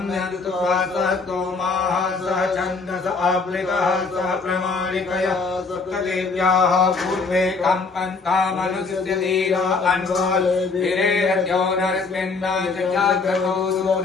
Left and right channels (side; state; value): right; quieter; 4.2 dB